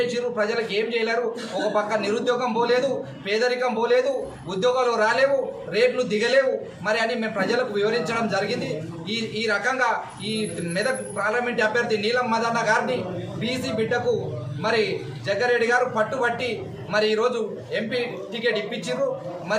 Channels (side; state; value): both; identical; correlation 1.00